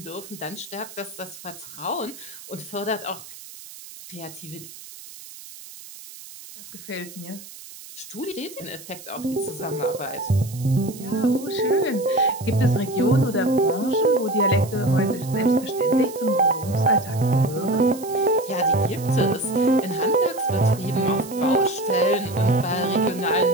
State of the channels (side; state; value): right; noise; hiss, 16 dB below the sound